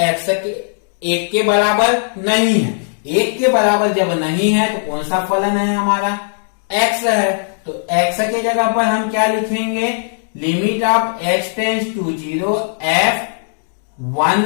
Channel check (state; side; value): silent; right; 68 dB below the other